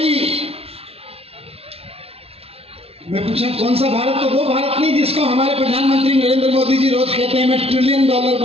मैं पूछा कौन सा भारत, तो वो भारत नहीं जिसको हमारे प्रधानमंत्री नरेंद्र मोदी जी रोज कहते हैं मैं $1 ट्रिलियन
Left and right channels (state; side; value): late; left; 0.29 ms